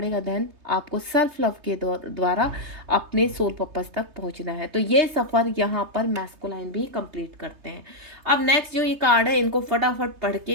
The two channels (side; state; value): left; late; 3.3 ms